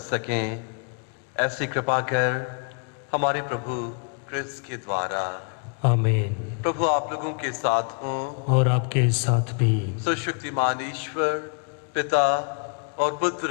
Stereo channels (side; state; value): right; quieter; 38.8 dB